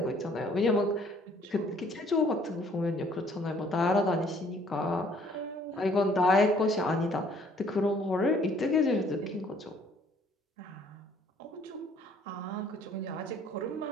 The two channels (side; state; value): both; normal; correlation 0.60